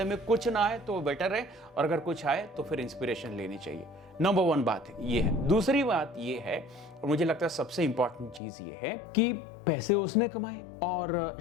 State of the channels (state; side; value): drops out; right; at 8.4 s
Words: में कुछ ना आए तो बेटर है, और अगर कुछ आए तो फिर इंस्पिरेशन लेनी चाहिए। नंबर 1 बात ये है। दूसरी बात ये है, और मुझे लगता है सबसे इंपॉर्टेंट चीज ये है कि पैसे उसने कमाए और